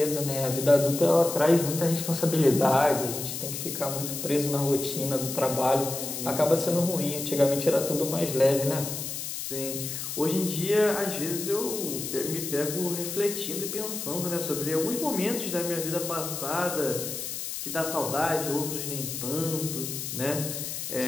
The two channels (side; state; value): left; noise; hiss, 5 dB below the sound